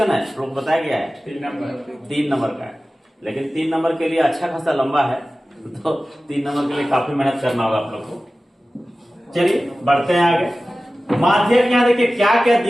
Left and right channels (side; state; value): both; normal; correlation 0.96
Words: है लोग बताया गया है? 3 नंबर का है, लेकिन 3 नंबर के लिए अच्छा खासा लंबा है तो 3 नंबर के लिए काफी मेहनत करना होगा आप लोग को। चलिए बढ़ते हैं आगे। माध्यक यहाँ देखिए क्या क्या